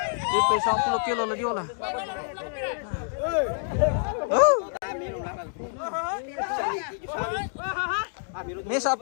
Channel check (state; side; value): silent; right; digital silence